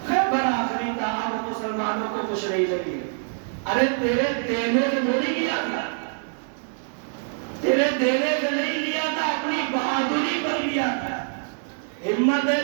مسلمانوں کو خوش نہیں لگی. ارے تیرے دینے سے تھوڑی لیا تھا, تیرے دینے سے نہیں لیا تھا, اپنی بہادری پر لیا تھا. ہمت ہے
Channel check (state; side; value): silent; left; digital silence